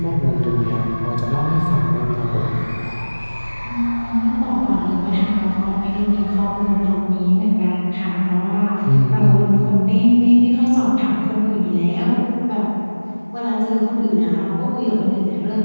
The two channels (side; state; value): both; inverted; correlation -1.00